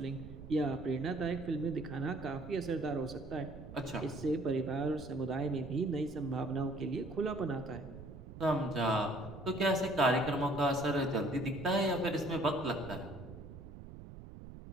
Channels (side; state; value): right; noise; rumble, 13 dB below the sound